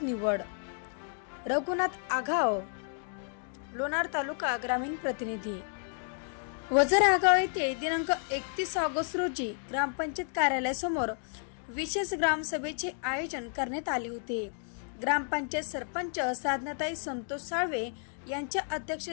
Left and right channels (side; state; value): right; silent; 57 dB below the other